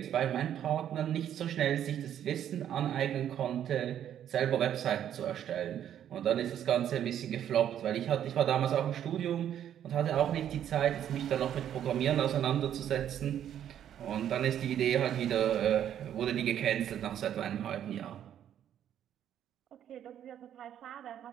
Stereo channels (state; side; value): quieter; left; 10.2 dB